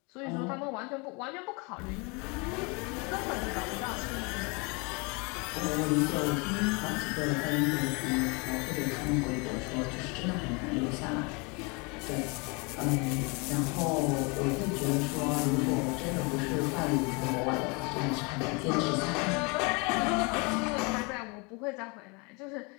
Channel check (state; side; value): quieter; right; 30.1 dB